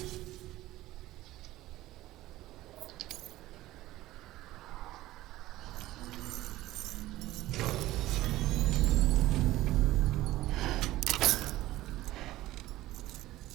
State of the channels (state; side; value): quieter; left; 16.4 dB